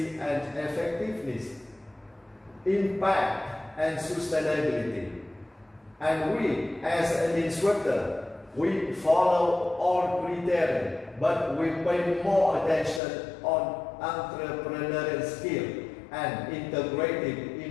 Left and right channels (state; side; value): drops out; right; at 13.0 s